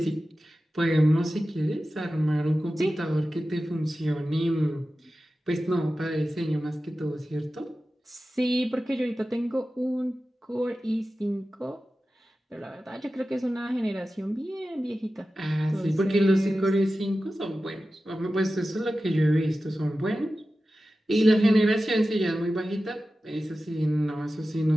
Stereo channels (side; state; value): both; normal; correlation 0.94